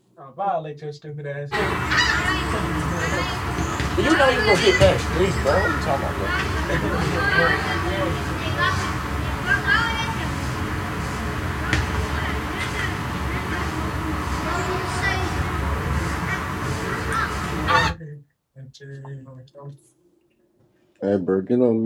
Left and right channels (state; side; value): identical; both; correlation 1.00